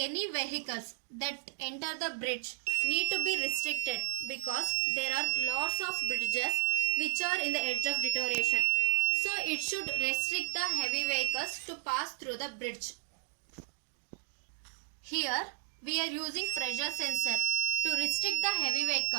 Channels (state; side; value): silent; left; digital silence